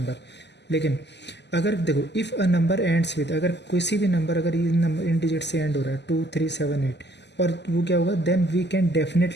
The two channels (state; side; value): late; right; 0.50 ms